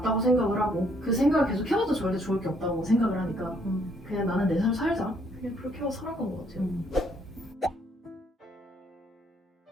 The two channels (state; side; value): normal; both; correlation 0.67